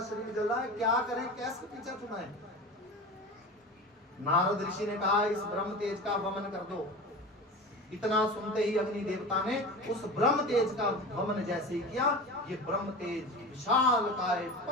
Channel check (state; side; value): normal; both; correlation 0.31